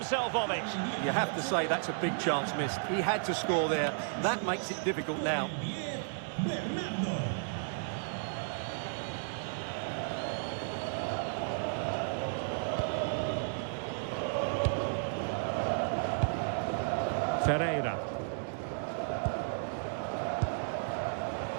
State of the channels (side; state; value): left; silent; digital silence